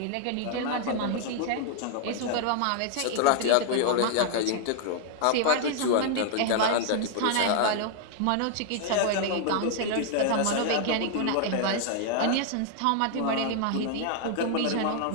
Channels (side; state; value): both; different; correlation 0.00